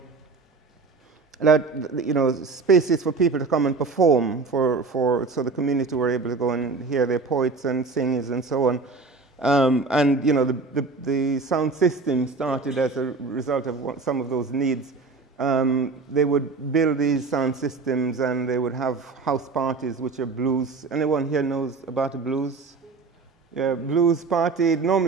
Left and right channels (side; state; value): left; quieter; 4.1 dB